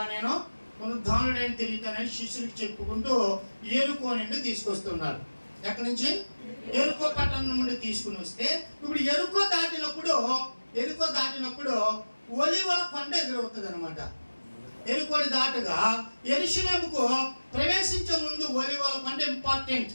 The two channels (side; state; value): both; inverted; correlation -1.00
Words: నేను పునరుద్ధానుడైన తిరుగుతానని శిష్యులకు చెప్పుకుంటూ యెరికో నుండి తీసుకొస్తున్నారు. ఎక్కడి నుంచి? యెరికో పట్టణం నుండి తీసుకుని వస్తే, ఇప్పుడు యెరికో దాటినప్పుడు ఒలీవల కొండ ఎదురవుతుంది అనమాట. యెరికోని దాటుగా యెరూషలేముకు ప్రవేశించే ముందు ఒలీవల కొండ ఇంపార్టెంట్.